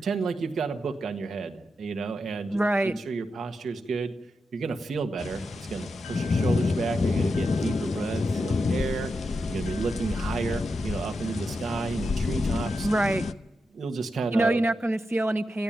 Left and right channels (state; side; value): normal; both; correlation 0.87